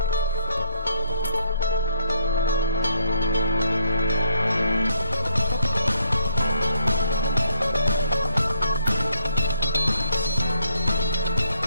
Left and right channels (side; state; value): both; inverted; correlation -0.70